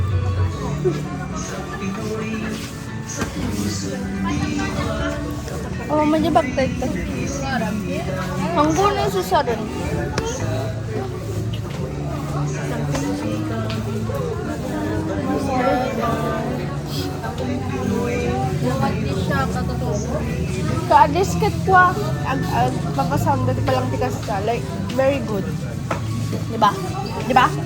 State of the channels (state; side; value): identical; both; correlation 1.00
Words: Oh, majabag tayo ito. Hanggang na sa saran. Ka-disket ko papasanda di palang tikas ka. Like, very good. Diba?